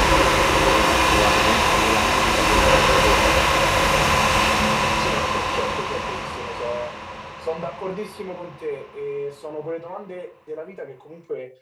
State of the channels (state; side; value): identical; both; correlation 1.00